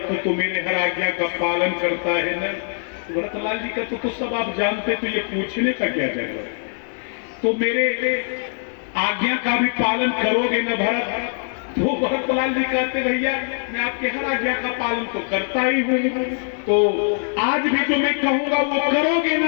तो मेरे हर आज्ञा का पालन करता है ना। तो भरतलाल जी कहते, तो सब आप जानते, तो ये पूछने का क्या जरूरत? तो मेरे आज्ञा का भी पालन करोगे ना भरत? तो भरतलाल जी कहते, भैया मैं आपके हर आज्ञा का पालन तो करता ही हूँ, तो आज भी जो मैं कहूंगा वो करोगे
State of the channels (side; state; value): right; silent; digital silence